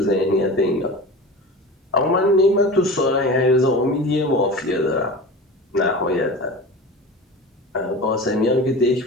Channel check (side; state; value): both; normal; correlation 0.33